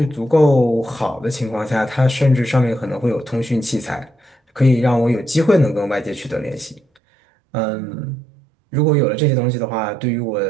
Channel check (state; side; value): drops out; left; at 6.8 s